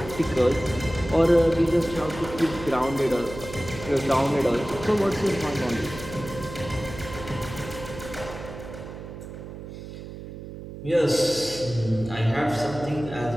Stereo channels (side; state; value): right; noise; hum, 11 dB below the sound